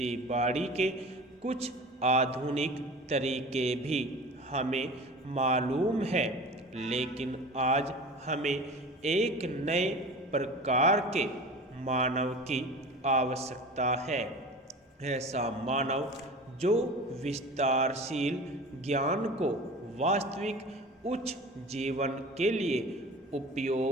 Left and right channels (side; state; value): both; normal; correlation 0.37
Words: बाड़ी के कुछ आधुनिक तरीके भी हमें मालूम है, लेकिन आज हमें एक नए प्रकार के मानव की आवश्यकता है। ऐसा मानव जो विस्तारशील ज्ञान को वास्तविक उच्च जीवन के लिए